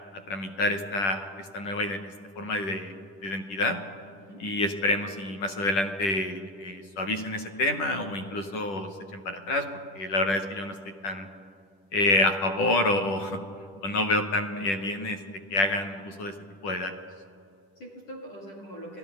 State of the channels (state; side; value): late; right; 10 ms